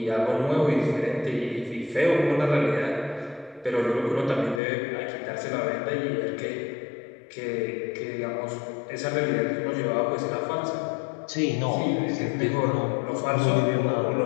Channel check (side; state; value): right; drops out; at 4.6 s